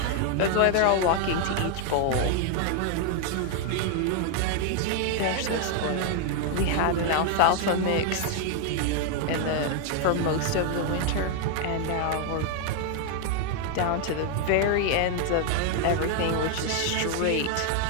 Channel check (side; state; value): both; different; correlation 0.00